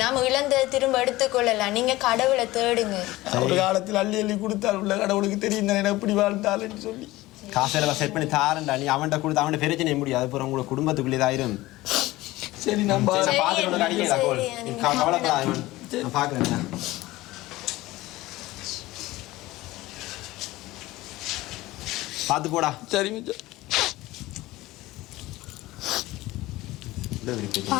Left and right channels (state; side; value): quieter; right; 18.4 dB